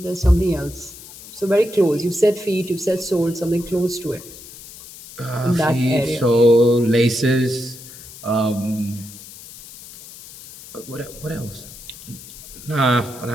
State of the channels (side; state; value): left; noise; hiss, 17 dB below the sound